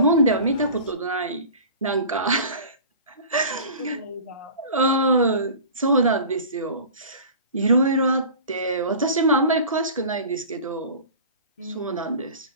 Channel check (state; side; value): inverted; both; correlation -0.39